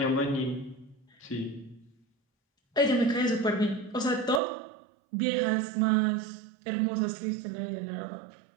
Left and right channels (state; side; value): drops out; left; at 4.4 s